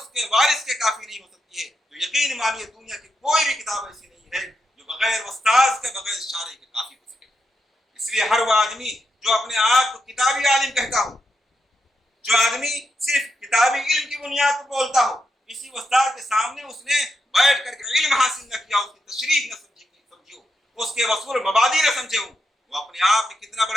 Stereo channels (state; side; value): normal; both; correlation 0.84